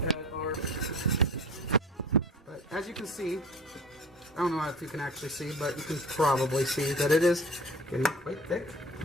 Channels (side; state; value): both; normal; correlation 0.41